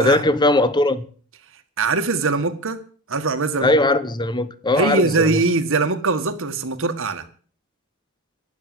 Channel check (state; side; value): normal; both; correlation 0.26